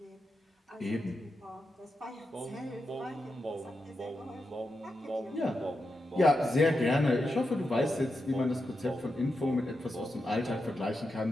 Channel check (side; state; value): both; normal; correlation 0.88